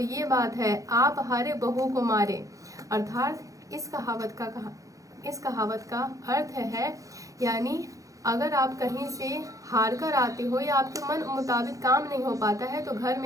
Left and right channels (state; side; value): late; left; 0.16 ms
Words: ये बात है, आप हारे बहू को मारे। अर्थात इस कहावत का अर्थ है, यानी अगर आप कहीं से हार कर आते हो या आपके मन मुताबिक काम नहीं हो पाता है तो घर